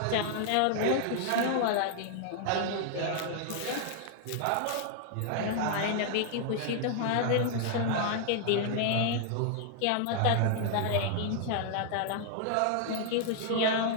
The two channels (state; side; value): different; both; correlation 0.00